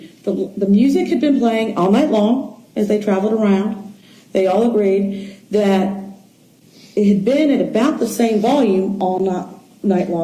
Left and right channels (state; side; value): identical; both; correlation 1.00